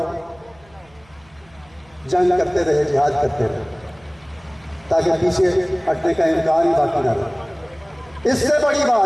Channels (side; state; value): right; noise; hum, 29 dB below the sound